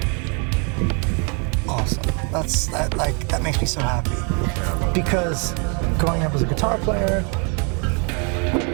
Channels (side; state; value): left; quieter; 36.1 dB